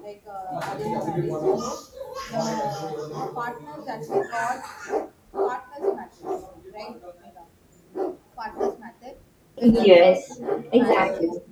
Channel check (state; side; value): identical; both; correlation 1.00